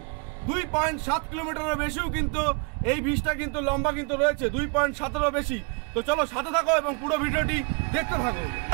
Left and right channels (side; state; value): left; quieter; 33.8 dB